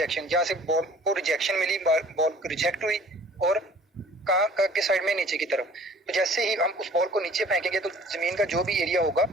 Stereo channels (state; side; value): normal; both; correlation 0.51